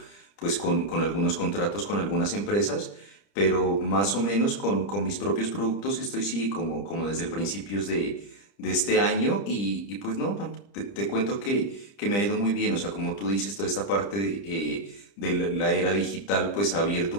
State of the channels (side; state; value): right; late; 30 ms